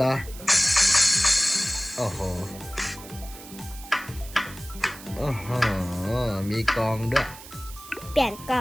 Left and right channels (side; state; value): right; noise; hiss, 16 dB below the sound